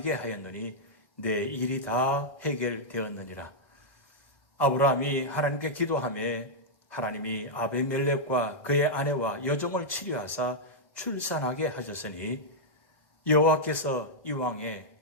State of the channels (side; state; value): right; late; 1.6 ms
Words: 하였느니 내 일이 다 해결되었느니라. 아브라함이 하나님께 기도하며 하나님이 아비멜렉과 그의 아내와 여종을 치료하사 출산하게 하셨으니 여호와께서 이왕에